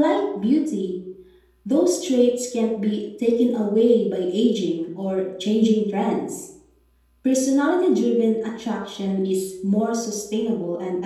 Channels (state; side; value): identical; both; correlation 1.00